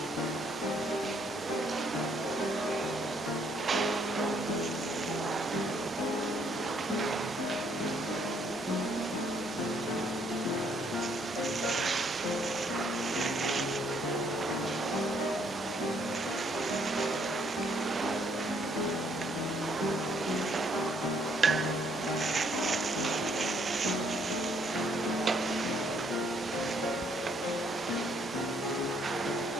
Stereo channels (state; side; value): normal; both; correlation 0.67